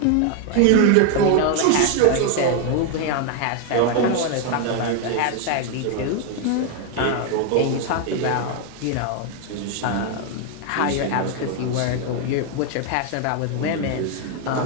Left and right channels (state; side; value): different; both; correlation 0.01